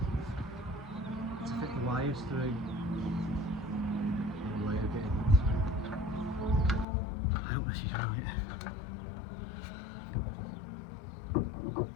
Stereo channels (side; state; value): right; drops out; at 6.9 s